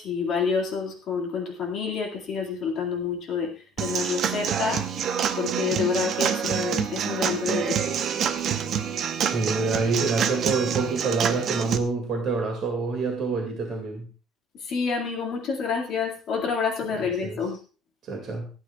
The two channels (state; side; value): normal; both; correlation 0.55